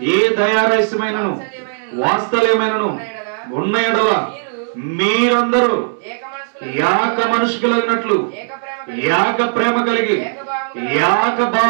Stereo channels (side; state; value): left; silent; 68 dB below the other